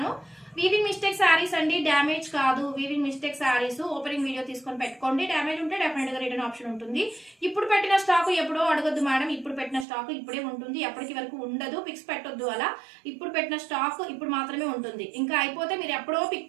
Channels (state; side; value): drops out; left; at 9.9 s